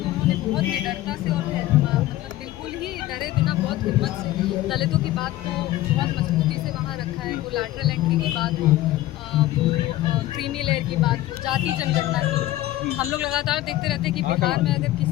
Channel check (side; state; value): right; quieter; 15.4 dB